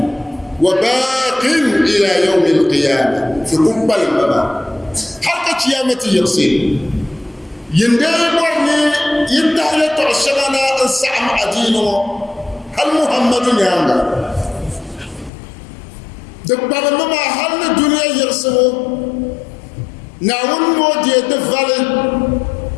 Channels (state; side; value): drops out; right; at 15.3 s